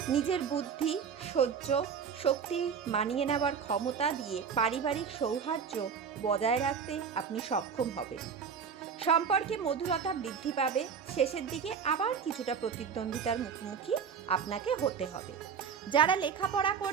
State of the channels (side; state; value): left; quieter; 6.7 dB